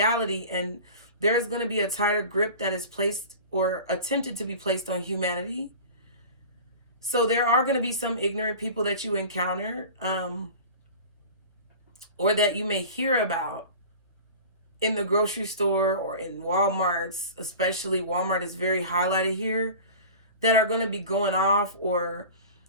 and there is going to be a tighter grip that is placed or attempted to be placed on humanity. So there are going to be some ignorant people that you encounter, or that you may hear about in the grocery store or in Walmarts, especially Walmart is very highlighted here, that are going to be going off or,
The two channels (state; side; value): inverted; both; correlation -0.37